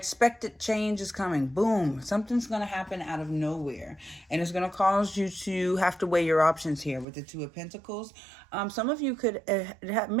change is coming. Boom, something's going to happen out of nowhere. And it's going to cause you to have to weigh your options here with the 2 of Pentacles. Some of you could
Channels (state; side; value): drops out; left; at 7.1 s